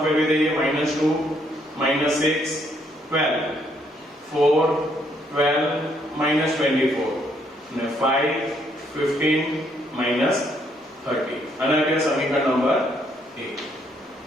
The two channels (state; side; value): normal; both; correlation 0.71